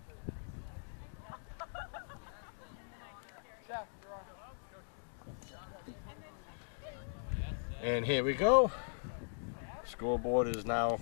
And here we go. Scoreboard is now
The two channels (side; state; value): right; silent; digital silence